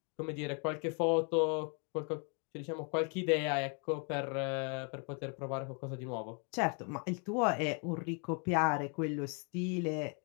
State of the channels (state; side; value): quieter; right; 37.8 dB